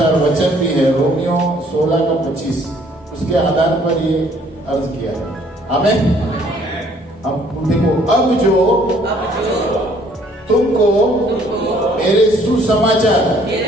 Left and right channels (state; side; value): normal; both; correlation 0.61